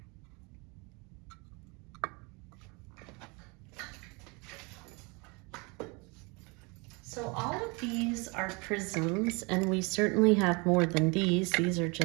So all of these are prisms, and we certainly have more than these. These are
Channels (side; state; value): left; quieter; 29.2 dB